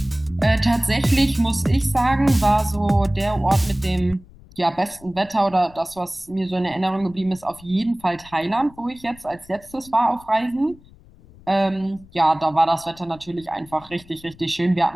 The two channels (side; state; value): left; noise; rumble, 24 dB below the sound